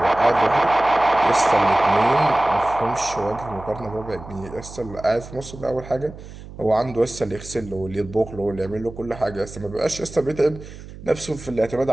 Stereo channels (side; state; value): right; noise; hum, 15 dB below the sound